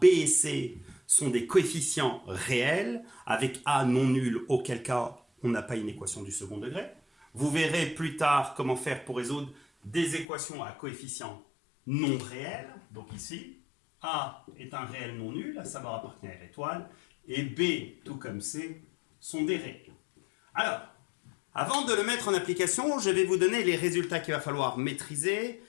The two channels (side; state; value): right; drops out; at 10.2 s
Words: b et c sont des coefficients réels, avec a non nul, auquel cas on n'a pas une équation du second degré. Vous verrez plus tard comment faire pour résoudre des équations à coefficients non réels. Donc ici, a est un réel non nul, à savoir à partenaire étoile, et b, tout comme c, sont des réels. Alors, avant de le mettre en application, je vais vous donner les résultats qu'il va falloir maîtriser.